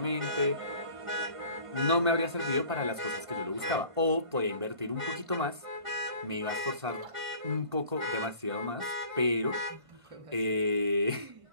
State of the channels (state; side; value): late; left; 1.5 ms